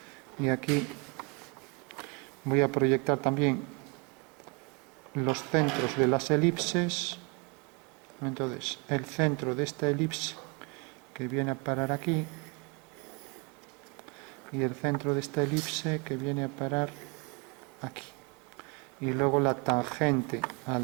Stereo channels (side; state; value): left; quieter; 30.8 dB